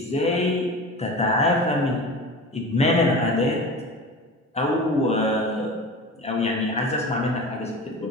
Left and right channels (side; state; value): both; normal; correlation 0.33